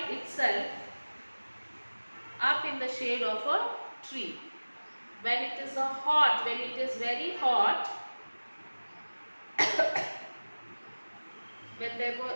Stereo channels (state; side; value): inverted; both; correlation -1.00